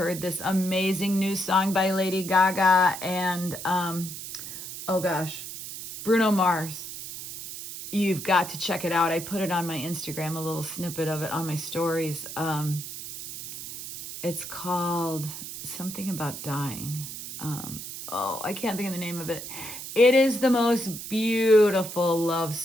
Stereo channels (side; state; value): right; noise; hiss, 9 dB below the sound